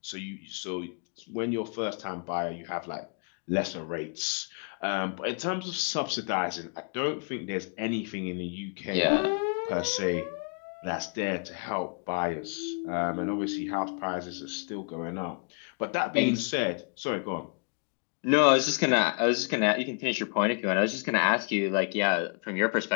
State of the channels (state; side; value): quieter; right; 38.9 dB